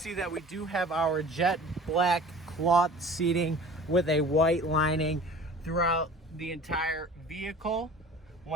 that we do have our jet black cloth seating with a white lining throughout the entire vehicle.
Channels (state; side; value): normal; both; correlation 0.43